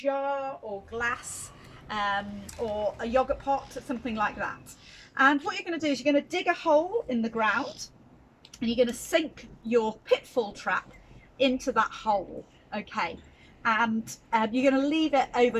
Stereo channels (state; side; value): identical; both; correlation 1.00